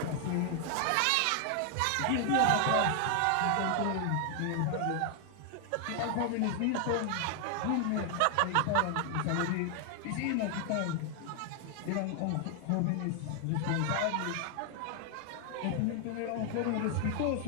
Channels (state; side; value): different; both; correlation 0.00